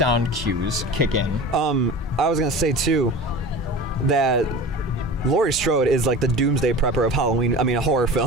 cues kick in. I was gonna say too that Laurie Strode is like the doomsday prepper of Halloween. I mean, a horror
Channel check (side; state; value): both; normal; correlation 0.35